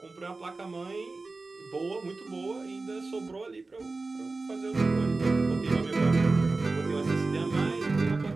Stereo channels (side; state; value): left; quieter; 3.6 dB